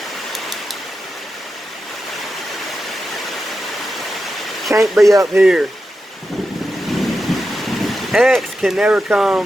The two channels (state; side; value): normal; both; correlation 0.90